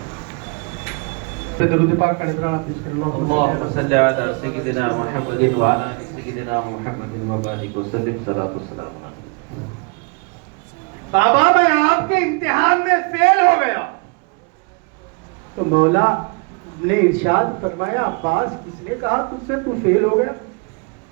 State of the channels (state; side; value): quieter; left; 32.4 dB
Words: درود پاک کا نذرانہ پیش کر اللهم صل على سيدنا محمد وعلى آل سيدنا محمد وبارك وسلم صلاة والسلام علیہ۔ بابا میں آپ کے امتحان میں فیل ہو گیا۔ تو مولا نے ارشاد فرمایا، عباس کس نے کہا تجھ سے تو فیل ہو گیا؟